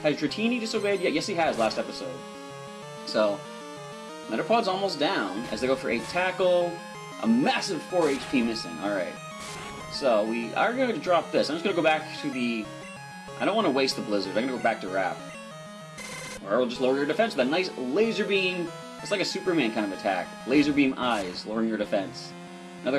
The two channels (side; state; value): both; identical; correlation 1.00